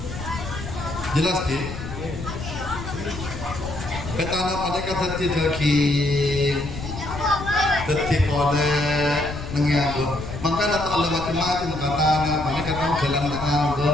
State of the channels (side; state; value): left; noise; rumble, 9 dB below the sound